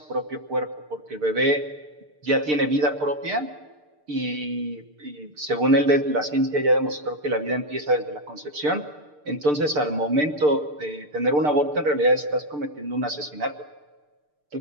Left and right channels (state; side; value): late; left; 6.7 ms